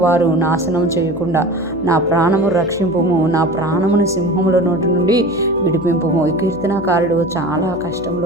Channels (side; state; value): left; noise; hum, 19 dB below the sound